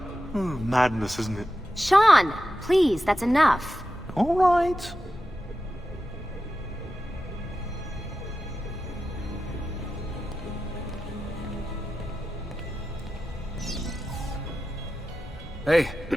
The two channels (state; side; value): normal; both; correlation 0.92